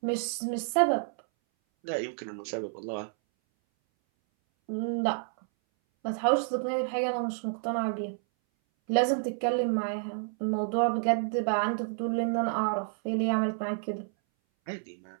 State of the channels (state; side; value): silent; left; 58 dB below the other